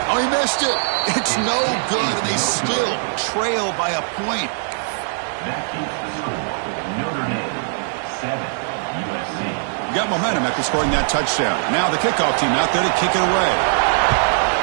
Oh, he missed it. It's no good, and they still trail by a point. That keeps the score with Notre Dame 7, USC. Got momentum after scoring that touchdown. Now the kickoff team out there to kick it away.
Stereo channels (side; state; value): left; silent; 61 dB below the other